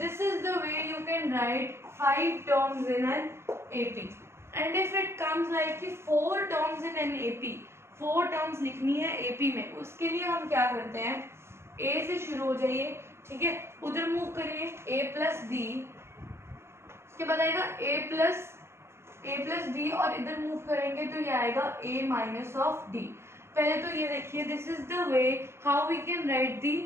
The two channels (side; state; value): left; late; 0.12 ms